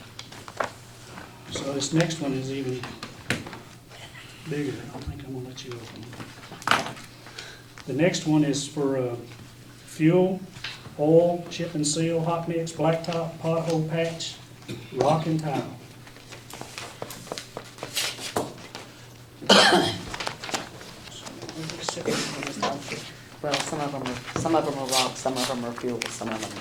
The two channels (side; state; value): both; identical; correlation 1.00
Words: So this next one is even bigger. I think I'm gonna let you open it. The next one is for fuel, oil, chip and seal, hot mix, blacktop, pothole patch, rock and tile. Well, some of them are rock, some of them are fuel, some of them are